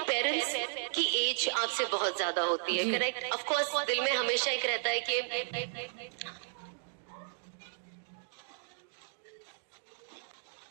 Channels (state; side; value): silent; left; digital silence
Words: की एज आपसे बहुत ज्यादा होती है, करेक्ट। ऑफ कोर्स दिल में हमेशा एक रहता है